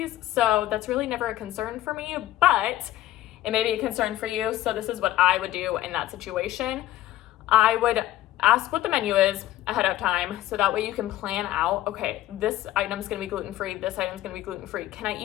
so that's really never a concern for me, but it may be a concern for you, so this is what I would do in that situation. I would ask what the menu is ahead of time, so that way you can plan out, okay, this item's gonna be gluten-free, this item's gonna be gluten-free. Can I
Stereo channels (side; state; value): right; quieter; 14.3 dB